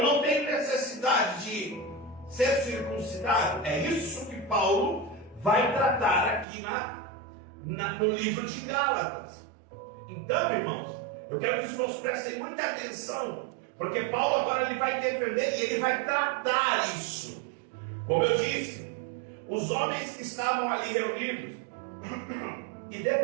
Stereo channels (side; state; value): left; drops out; at 6.5 s